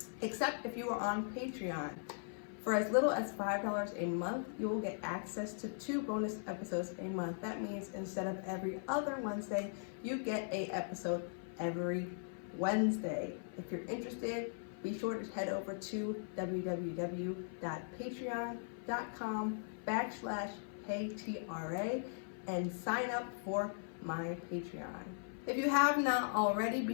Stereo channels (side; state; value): right; silent; 52 dB below the other